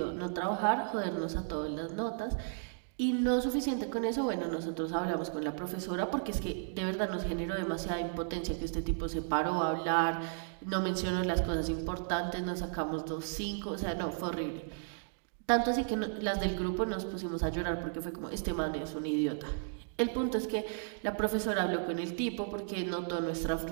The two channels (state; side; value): silent; left; digital silence